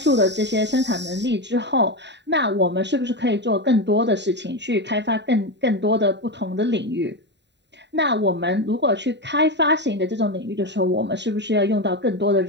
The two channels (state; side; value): late; left; 0.51 ms